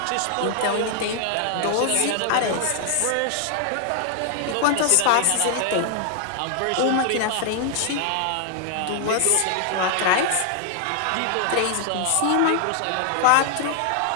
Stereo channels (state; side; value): different; both; correlation 0.00